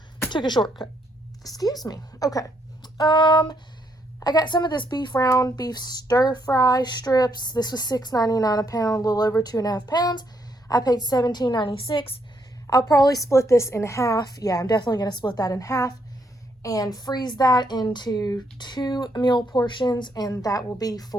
took a shortcut. Excuse me. Okay. I got some of this round beef stir fry strips. This was $6.99 a pound, a little over 2.5 pounds. I paid $17.96. I'll probably split this in half. Yeah, I'm definitely going to split that in half and freeze that into 2 meal portions, and that will be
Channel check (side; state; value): both; normal; correlation 0.74